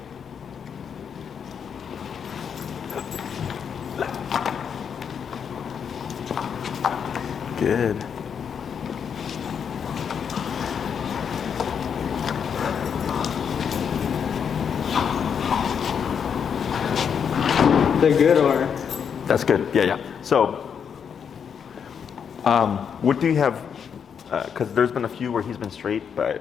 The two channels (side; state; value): right; quieter; 7.3 dB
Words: Good. They're good, or? That's good. Yeah, yeah. So, what do you have? Because there's been a few where he's been straight, but